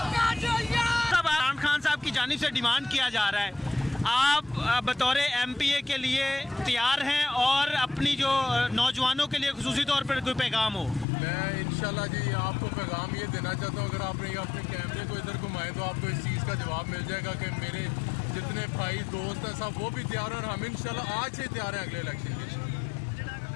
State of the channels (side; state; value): right; drops out; at 11.1 s